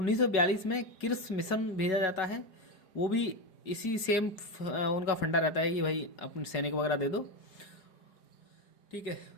में किर्स मिशन भेजा जाता है, वो भी इसी सेम उनका फंडा रहता है कि भाई अपने सैनिक वगैरह दे दो, ठीक है,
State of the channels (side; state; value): right; late; 4.8 ms